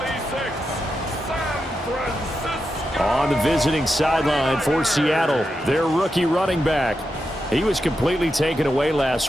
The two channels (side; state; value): both; normal; correlation 0.87